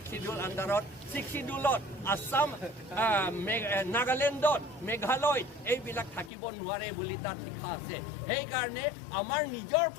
আণ্ডাৰত শিডিউলত আসাম নাগালেণ্ডত মেঘালয়ত এইবিলাক থাকিব নোৱাৰে বুলি তাত লিখা আছে সেইকাৰণে আমাৰ নিজৰ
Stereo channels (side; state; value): right; drops out; at 6.3 s